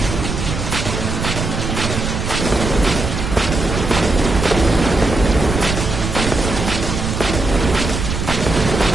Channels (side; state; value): right; noise; rumble, 4 dB below the sound